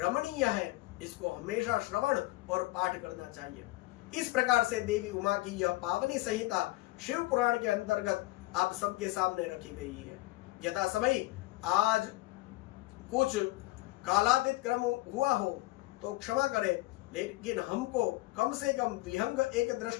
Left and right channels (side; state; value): right; quieter; 19.8 dB